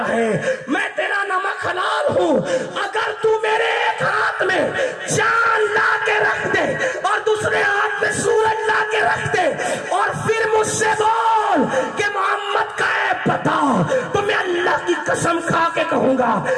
ہے, میں تیرا نمک حلال ہوں. اگر تو میرے ایک ہاتھ میں چاند لا کے رکھ دے اور دوسرے ہاتھ میں سورج لا کے رکھ دے اور پھر مجھ سے بول کہ محمد کا ہے پتہ تو میں اللہ کی قسم کھا کے کہوں گا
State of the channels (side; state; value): both; identical; correlation 1.00